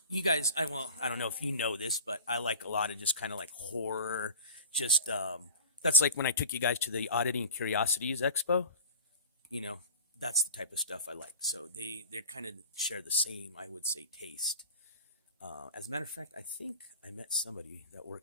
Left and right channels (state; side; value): inverted; both; correlation -0.37